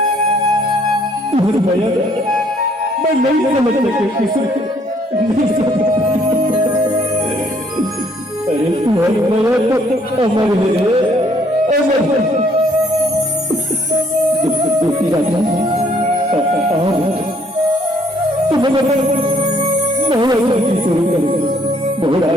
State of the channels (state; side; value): normal; both; correlation 0.65